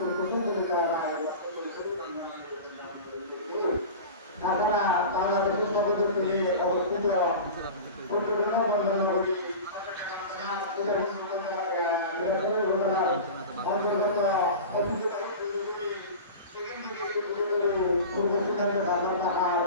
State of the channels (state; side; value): inverted; both; correlation -0.32